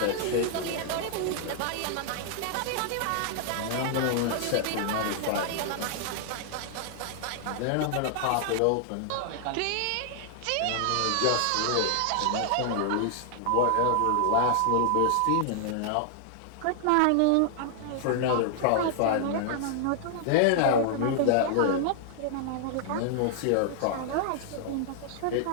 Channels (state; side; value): different; both; correlation -0.01